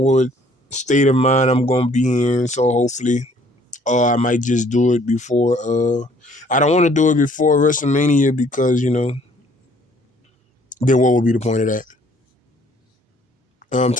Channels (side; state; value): both; normal; correlation 0.60